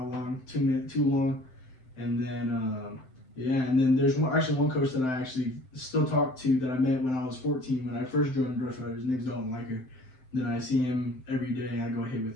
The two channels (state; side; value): late; right; 7.8 ms